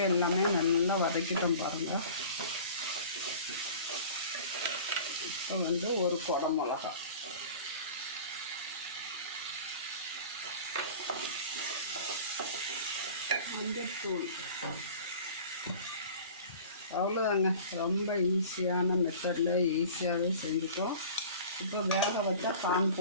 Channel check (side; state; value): both; inverted; correlation -0.42